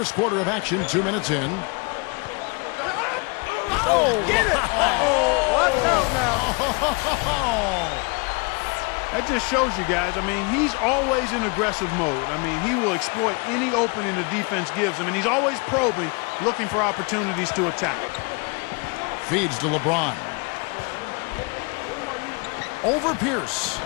quarter of action, 2 minutes in. Oh, get it! Oh, watch out now. That just shows you guys, I mean, he's always in aggressive mode. I mean, he will exploit any opening the defense gives him, and he's always probing, looking for opportunities to attack. Feeds to LeBron. Over Pierce.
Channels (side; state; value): right; quieter; 31.1 dB